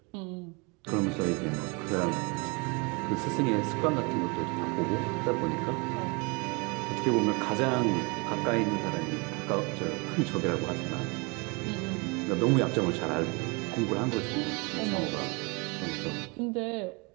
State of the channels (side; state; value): left; quieter; 29.6 dB